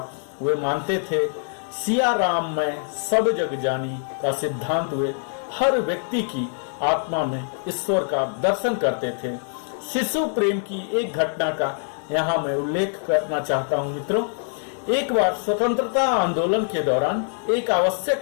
वे मानते थे सिया राम में सब जग जानी का सिद्धांत। वे हर व्यक्ति की आत्मा में ईश्वर का दर्शन करते थे। शिशु प्रेम की एक घटना का यहाँ मैं उल्लेख करना चाहता हूँ। मित्रों, एक बार स्वतंत्रता आंदोलन के दौरान एक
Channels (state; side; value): silent; right; 61 dB below the other